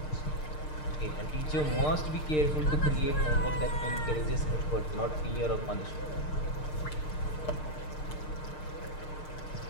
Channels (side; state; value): right; late; 6.6 ms